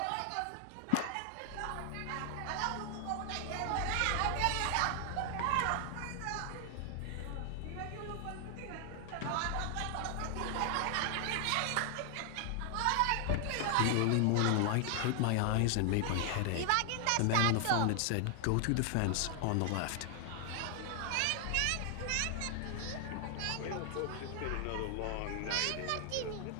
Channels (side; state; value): both; different; correlation 0.00